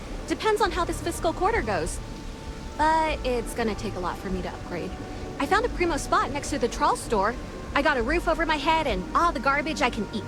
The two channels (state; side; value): identical; both; correlation 1.00